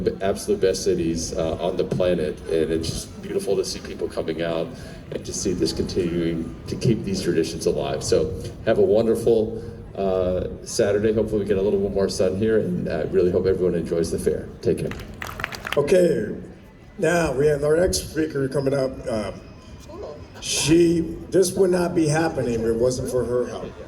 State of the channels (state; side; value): identical; both; correlation 1.00